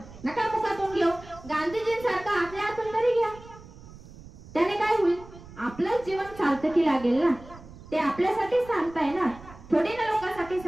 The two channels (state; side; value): noise; right; rumble, 18 dB below the sound